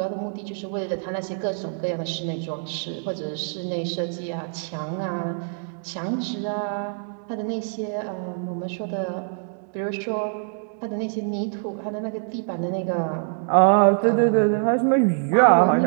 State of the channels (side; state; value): left; silent; digital silence